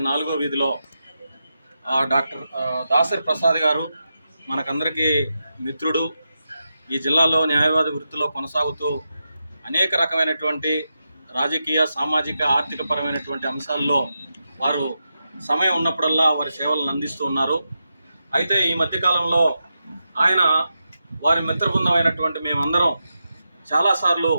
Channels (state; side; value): inverted; both; correlation -0.88